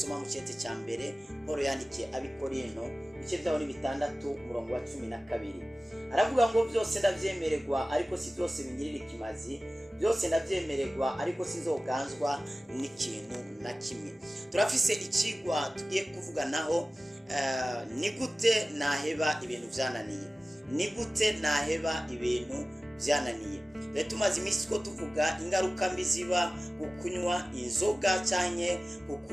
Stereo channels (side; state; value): both; normal; correlation 0.96